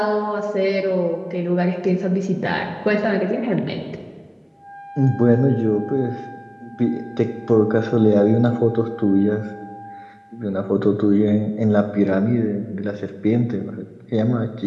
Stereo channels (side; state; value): both; identical; correlation 1.00